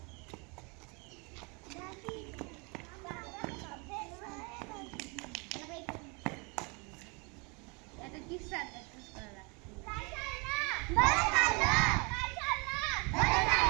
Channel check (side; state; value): left; quieter; 31.1 dB